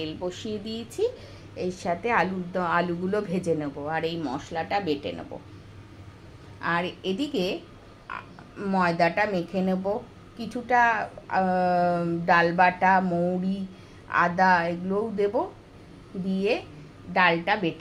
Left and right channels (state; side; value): identical; both; correlation 1.00